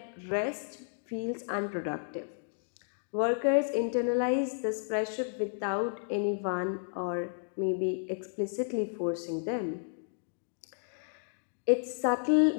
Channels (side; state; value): right; silent; digital silence